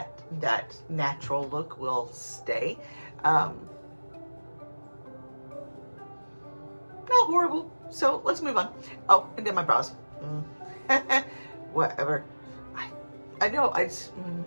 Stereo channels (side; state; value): both; inverted; correlation -1.00